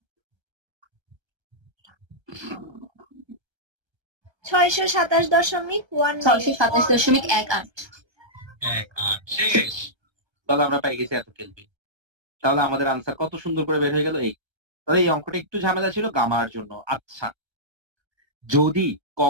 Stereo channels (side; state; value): left; late; 1.3 ms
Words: ছয়শো 627.18। শেষ। তাহলে আমরা পেয়ে গেছি এত কেলভিন। তাহলে আমাদের আনসার কত সুন্দর করে বের হয়ে গেল। এই তাহলে এই অঙ্কটা একটু ঝামেলা ছিল গামার জন্য। আচ্ছা, যদি